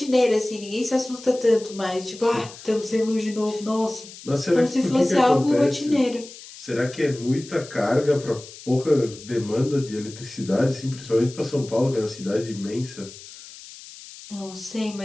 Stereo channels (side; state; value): left; noise; hiss, 17 dB below the sound